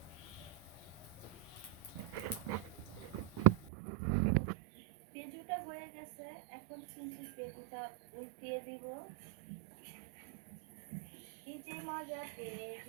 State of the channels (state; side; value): drops out; left; at 3.7 s